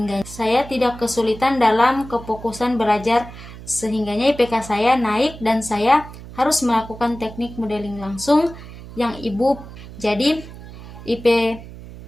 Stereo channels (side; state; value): right; noise; hum, 15 dB below the sound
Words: saya tidak kesulitan dalam kefokusan belajar, sehingganya IPK saya naik dan saya harus melakukan teknik modeling langsung yang Ibu. Jadi